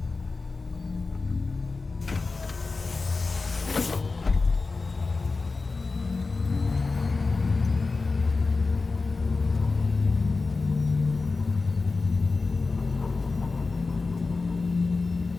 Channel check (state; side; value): quieter; right; 4.0 dB